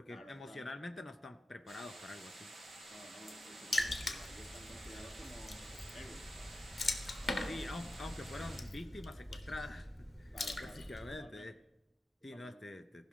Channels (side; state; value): both; normal; correlation 0.93